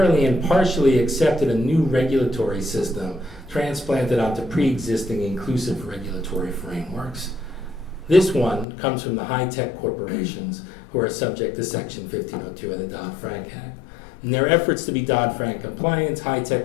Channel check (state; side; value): drops out; right; at 8.7 s